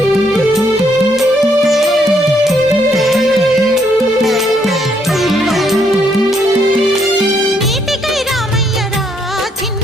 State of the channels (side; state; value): both; normal; correlation 0.72